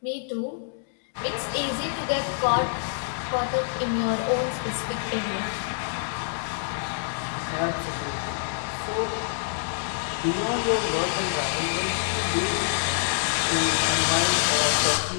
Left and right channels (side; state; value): right; silent; digital silence